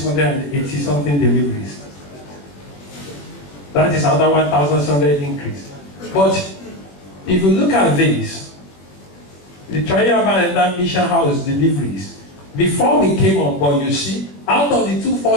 something deliveries. That is another 1,700 increase. But if you look at this, the Trial Mission House deliveries, before we came on board, you see, out of the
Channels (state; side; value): late; right; 21 ms